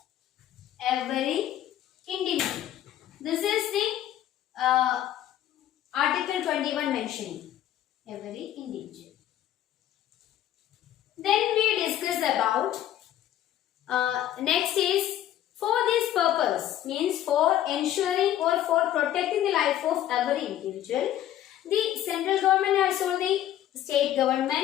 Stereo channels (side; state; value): right; quieter; 12.1 dB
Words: every individual. This is the article 21 mentioning every individual. Then we discuss about next is for this purpose, means for ensuring or for protecting the life of every individual, the central government has told the state